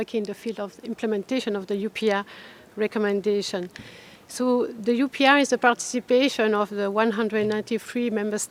in the field of implementation of the UPR recommendation. So the UPR is the participation of the 193 member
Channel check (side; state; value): both; identical; correlation 1.00